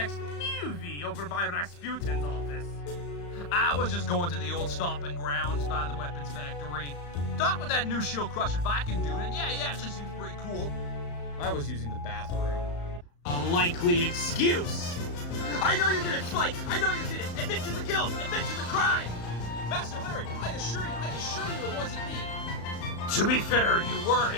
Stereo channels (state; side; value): late; right; 35 ms